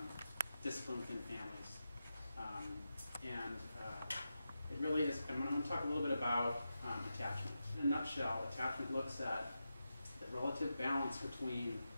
discipline within families. It really is, I'm going to talk a little bit about attachment. In a nutshell, attachment looks at the relative balance between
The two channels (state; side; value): inverted; both; correlation -0.90